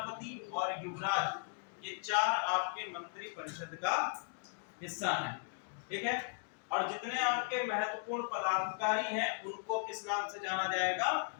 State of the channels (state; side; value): silent; right; 53 dB below the other